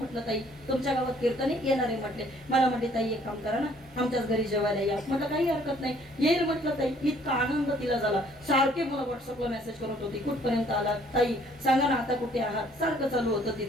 ताई तुमच्या गावात कीर्तने येणार आहे म्हटले. मला म्हटले ताई एक काम करा ना, आमच्याच घरी जेवायला या. म्हटलं काही हरकत नाही, येईल म्हटलं ताई. इतका आनंद तिला झाला, सारखे मला व्हॉट्सअपला मेसेज करत होती, कुठपर्यंत आला ताई, सांगा ना आता कुठे आहात, सारखं चालू होतं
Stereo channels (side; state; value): both; normal; correlation 0.60